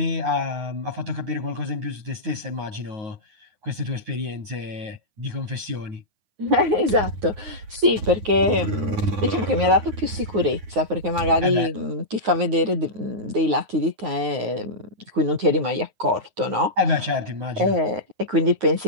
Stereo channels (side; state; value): left; late; 9.5 ms